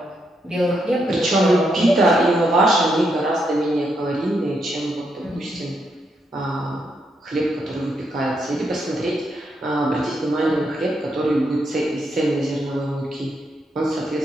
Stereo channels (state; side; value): normal; both; correlation 0.79